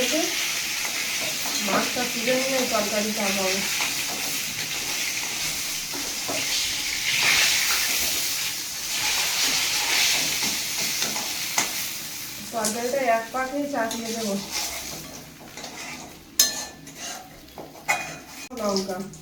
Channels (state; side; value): identical; both; correlation 1.00